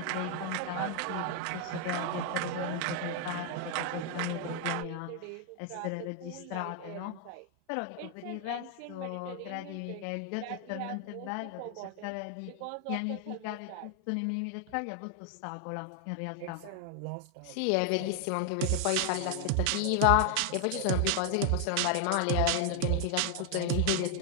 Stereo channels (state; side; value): different; both; correlation 0.00